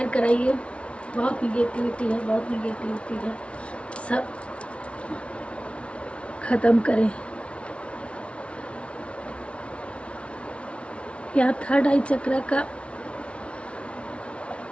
कराइए। बहुत निगेटिविटी है, बहुत निगेटिविटी है, सब ख़त्म करें। यहाँ थर्ड आई चक्र का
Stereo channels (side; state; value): right; late; 0.061 ms